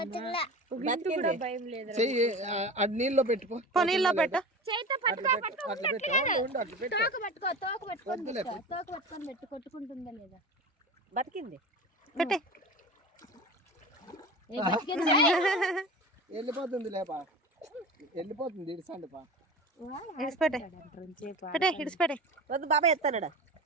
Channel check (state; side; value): normal; both; correlation 0.32